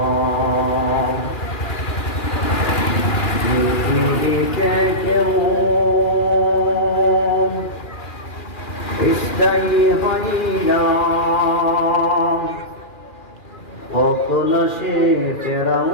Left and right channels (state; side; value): late; right; 2.4 ms